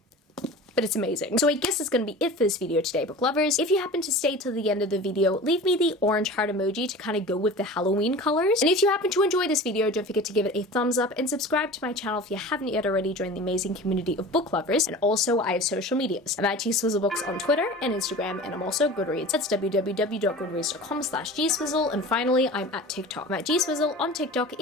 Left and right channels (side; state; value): both; normal; correlation 0.37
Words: but it's amazing. So I guess that's gonna be it for this video today, book lovers. If you happen to stay till the end of the video, leave me the orange heart emoji to kind of go with the Halloween colors. And if you happen to enjoy this video, don't forget to give it a thumbs up and subscribe to my channel if you haven't yet already. Join the amazing community of book lovers. And also, I have social medias. I'm at GSwizzleBooks on Twitter and Instagram, and I'm also GoodReads. That's www.goodreads.com/GSwizzle. And finally, I'm at TikTok. I'm at GSwizzle on TikTok